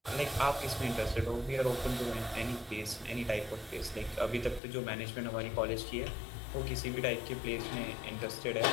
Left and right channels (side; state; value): right; drops out; at 4.6 s